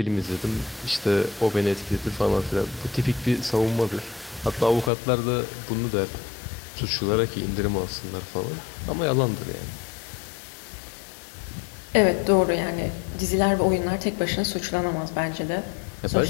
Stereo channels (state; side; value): drops out; right; at 4.9 s